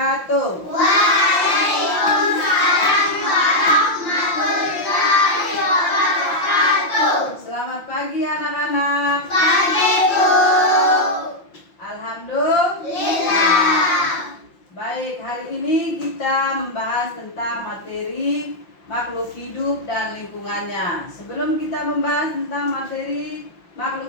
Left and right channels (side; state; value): right; late; 5.8 ms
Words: Waalaikumsalam warahmatullahi wabarakatuh. Selamat pagi anak-anak. Pagi Bu. Alhamdulillah. Baik, hari ini kita membahas tentang materi makhluk hidup dan lingkungannya. Sebelum kita membahas tentang materi